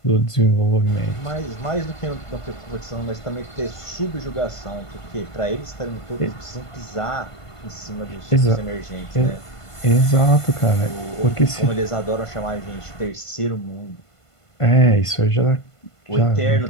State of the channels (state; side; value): late; right; 1.5 ms